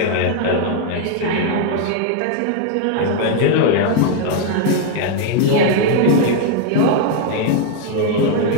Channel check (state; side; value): different; both; correlation 0.00